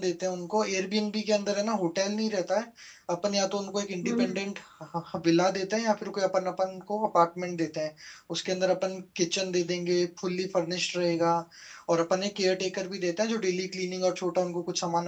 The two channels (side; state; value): both; identical; correlation 1.00